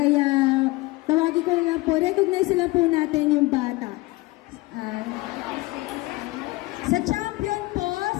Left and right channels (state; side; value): quieter; right; 21.4 dB